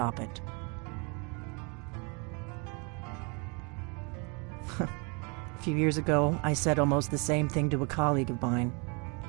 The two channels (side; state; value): left; quieter; 32.5 dB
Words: it. A few years ago, I said almost the same thing to a colleague of mine.